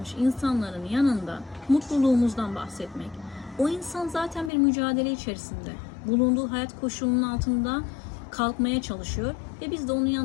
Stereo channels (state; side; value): drops out; right; at 4.5 s